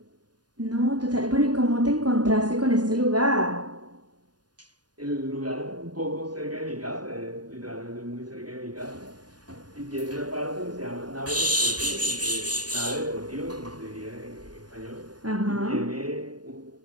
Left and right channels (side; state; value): left; late; 0.69 ms